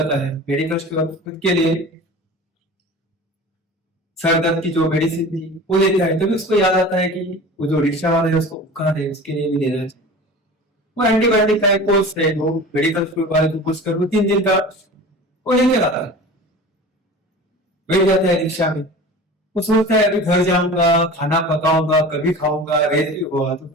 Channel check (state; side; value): normal; both; correlation 0.37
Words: है, मेडिकल स्टोर खुद के लिए सर दर्द की जो मेडिसिन थी वो लेता है, तभी उसको याद आता है कि वो जो रिक्शा वाला है उसको बुखार है, उसके लिए भी लेना चाहिए। वो एंटीबायोटिक का एक कोर्स है, वो मेडिकल स्टोर वाले को पूछ कर वो 3 दिन का वो लेके आता है, बैठ जाता है रिक्शा में। वो सोचता है अभी घर जाऊंगा, खाना पकाऊंगा, कभी खाऊंगा, रेत भी हुआ तो